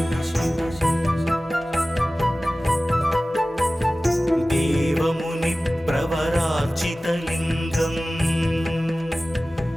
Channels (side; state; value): both; normal; correlation 0.97